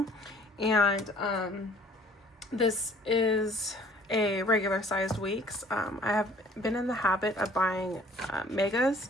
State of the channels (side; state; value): both; normal; correlation 0.54